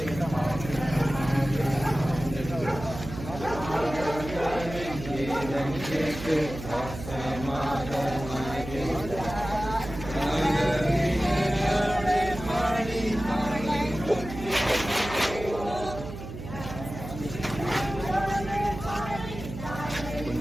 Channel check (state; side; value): noise; right; hum, 10 dB below the sound